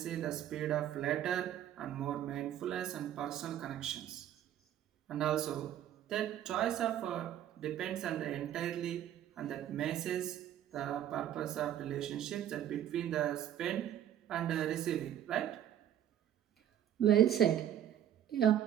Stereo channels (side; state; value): left; quieter; 10.8 dB